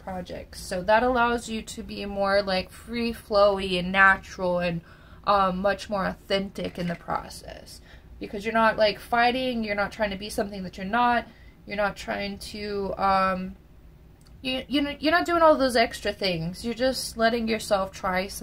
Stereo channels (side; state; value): both; identical; correlation 1.00